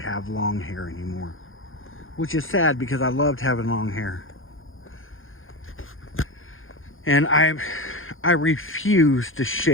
long hair anymore, which is sad because I loved having long hair. And I refuse to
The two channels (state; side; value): late; right; 0.59 ms